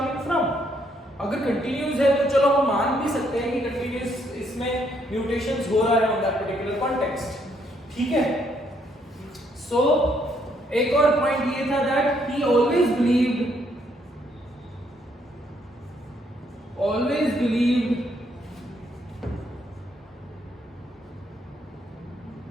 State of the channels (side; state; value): both; normal; correlation 0.71